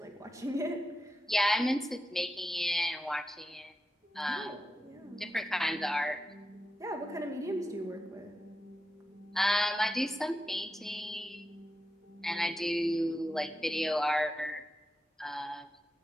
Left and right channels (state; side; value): normal; both; correlation 0.89